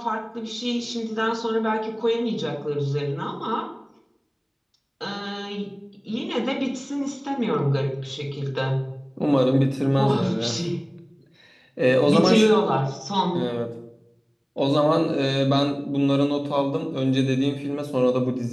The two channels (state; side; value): identical; both; correlation 1.00